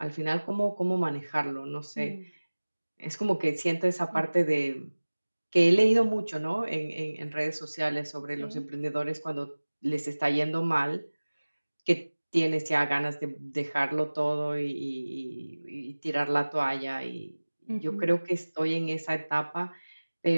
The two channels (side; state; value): both; inverted; correlation -1.00